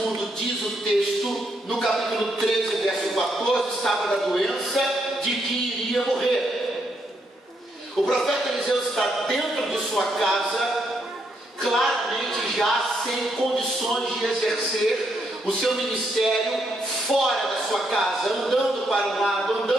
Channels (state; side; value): normal; both; correlation 0.77